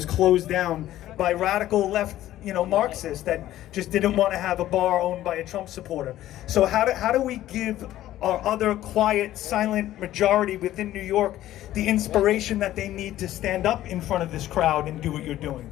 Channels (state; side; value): quieter; right; 13.9 dB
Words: closed down by radical left, Marxists that just didn't want to have a bar owned by a Trump supporter. So how do we give our other quiet, silent majority within New York the inspiration that they need to stand up in front of this crowd and do what you're doing?